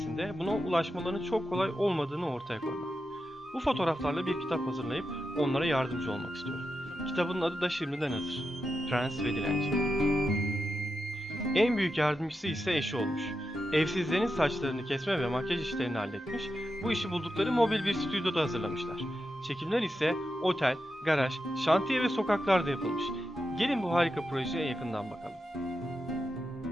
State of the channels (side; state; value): both; normal; correlation 0.88